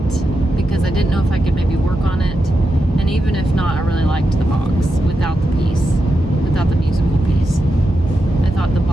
because I didn't know if I could maybe work on it. And even if not, I really liked the box without the piece, without the musical piece. I thought the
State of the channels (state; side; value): normal; both; correlation 0.87